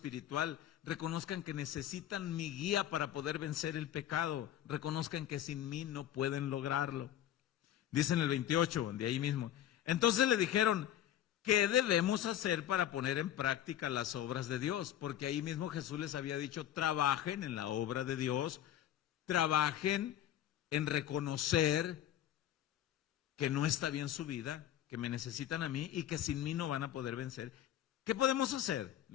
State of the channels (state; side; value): quieter; right; 11.4 dB